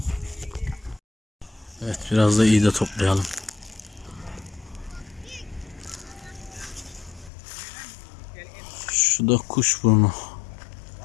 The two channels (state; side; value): drops out; right; at 7.3 s